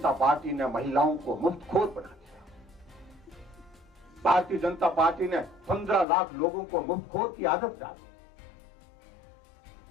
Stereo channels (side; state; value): right; drops out; at 6.1 s